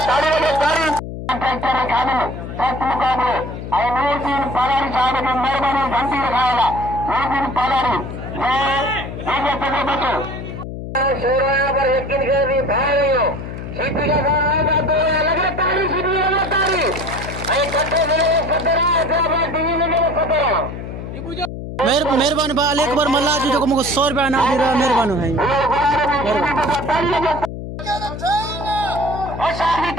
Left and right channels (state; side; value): noise; left; hum, 8 dB below the sound